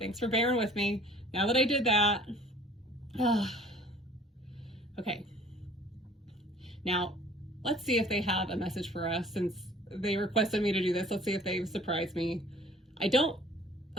for bearing with me. Now that I did that, okay. Now, let's see if they have a message for us since they requested me to do this. Let's see if they've surprised me. I don't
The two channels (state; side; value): normal; both; correlation 0.52